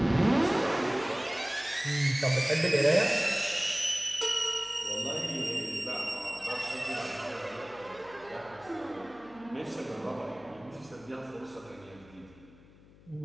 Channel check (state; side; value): noise; left; hum, 24 dB below the sound